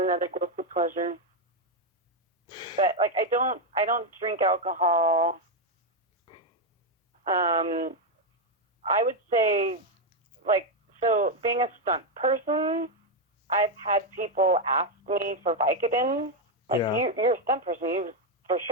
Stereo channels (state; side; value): normal; both; correlation 0.04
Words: guilty pleasure. But like I don't drink alcohol. I would say so being a stunt person, I've had people ask me for Vicodin. You're a stunt person, for